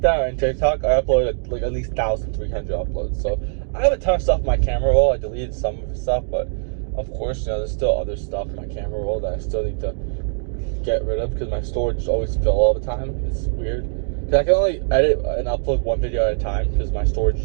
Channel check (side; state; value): left; silent; digital silence